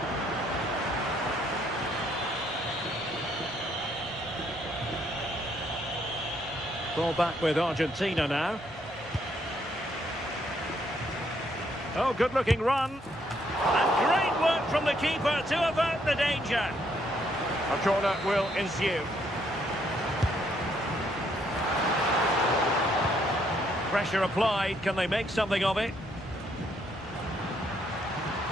Ball back with Argentina now. Oh, good-looking run. And great work from the keeper to avert the danger. A corner will ensue. Pressure applied. Can they make something of it?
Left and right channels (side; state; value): both; normal; correlation 0.71